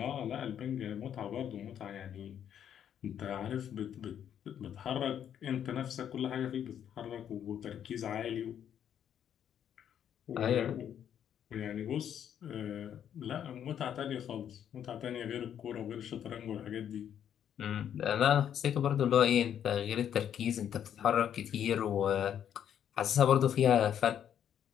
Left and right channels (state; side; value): quieter; right; 9.4 dB